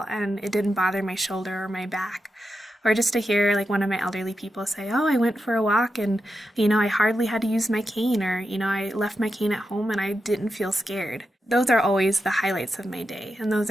and it didn't bother my shoulder or my back, or just to hear like one of my elderly people say, I went for a walk and, I hardly had to use my cane, or, I left my cane at home and I didn't feel scared. Those are always the highlights of my day. And those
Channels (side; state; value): both; normal; correlation 0.88